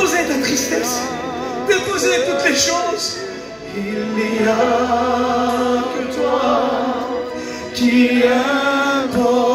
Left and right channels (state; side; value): identical; both; correlation 1.00